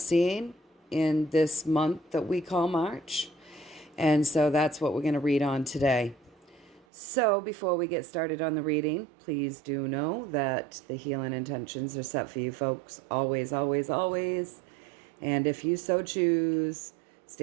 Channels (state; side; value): drops out; left; at 6.9 s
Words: in this month that we call March. And so that's what we're going to read on today. So before we get started on the reading, please do know that the healing intentions are set for you folks always, always, always. And if you so choose,